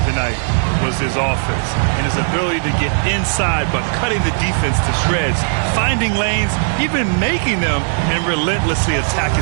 tonight was his offense and his ability to get inside but cutting the defense to shreds, finding lanes, even making them, and relentlessly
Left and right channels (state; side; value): silent; left; 68 dB below the other